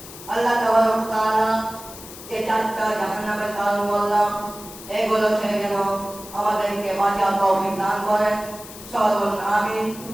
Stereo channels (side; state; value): left; noise; hiss, 15 dB below the sound